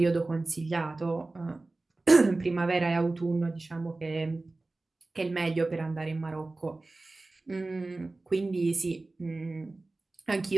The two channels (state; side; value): quieter; left; 3.2 dB